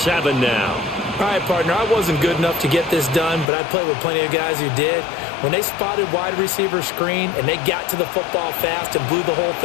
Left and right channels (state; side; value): drops out; right; at 3.5 s